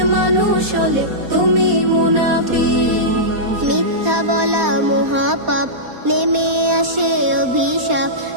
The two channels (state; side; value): late; left; 4.2 ms